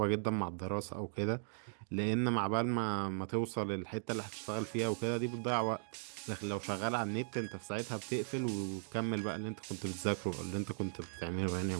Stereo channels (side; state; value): left; silent; digital silence